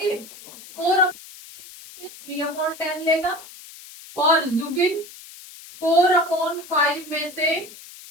3/10 लेगा। और जुबिन 4/5 में से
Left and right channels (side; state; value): left; noise; hiss, 18 dB below the sound